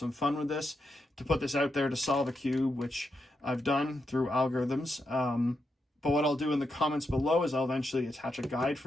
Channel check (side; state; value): both; normal; correlation 0.85